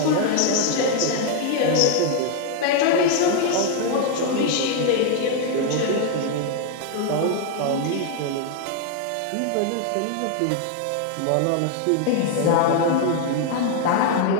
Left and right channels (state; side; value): different; both; correlation 0.00